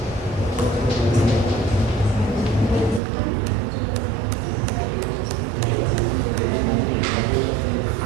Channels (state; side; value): drops out; left; at 3.0 s